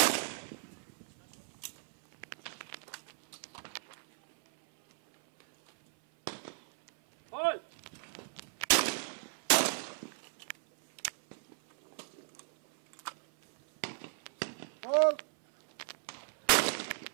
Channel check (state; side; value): silent; left; 54 dB below the other